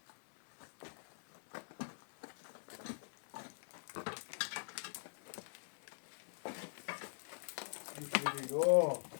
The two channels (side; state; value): right; silent; digital silence